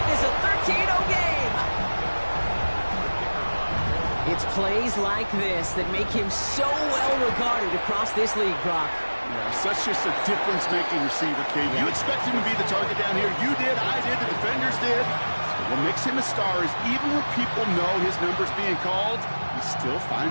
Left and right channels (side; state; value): both; inverted; correlation -1.00